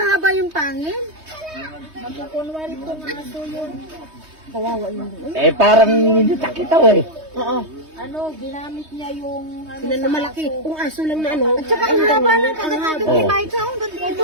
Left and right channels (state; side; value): late; left; 3.2 ms